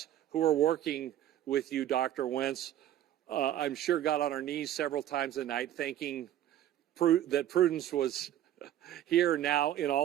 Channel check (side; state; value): left; quieter; 12.0 dB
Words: who are working with you, Dr. Wentz, I'm sure got on our knees several times a night thanking that Prudence was here now in